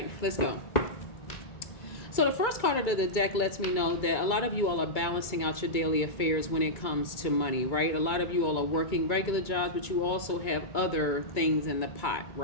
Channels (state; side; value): late; right; 2.3 ms